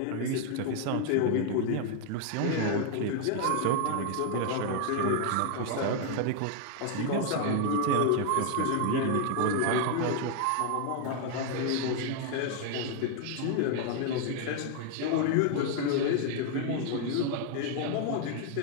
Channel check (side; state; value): both; different; correlation 0.00